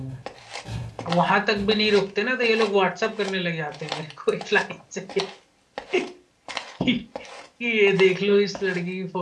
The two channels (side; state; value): both; identical; correlation 1.00